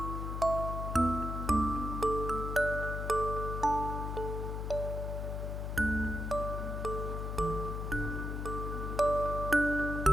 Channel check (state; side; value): noise; left; hum, 3 dB below the sound